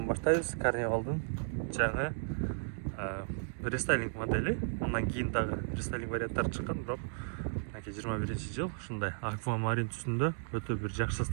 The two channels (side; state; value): left; silent; digital silence